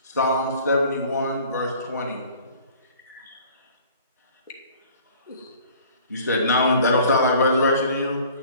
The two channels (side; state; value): both; inverted; correlation -0.51